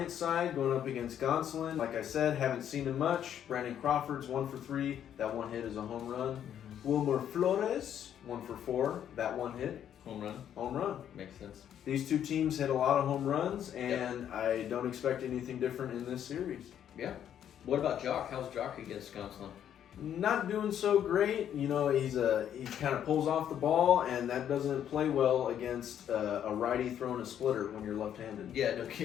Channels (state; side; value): quieter; right; 9.8 dB